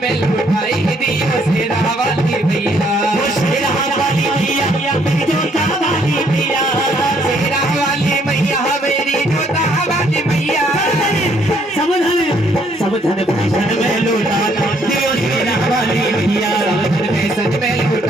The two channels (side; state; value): both; normal; correlation 0.67